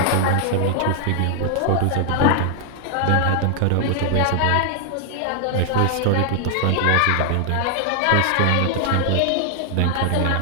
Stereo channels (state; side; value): different; both; correlation 0.00